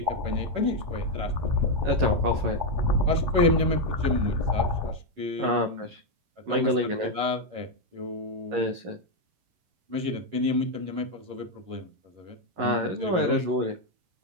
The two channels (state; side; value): late; left; 11 ms